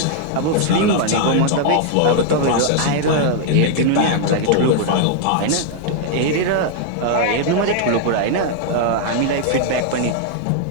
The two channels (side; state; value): both; different; correlation 0.00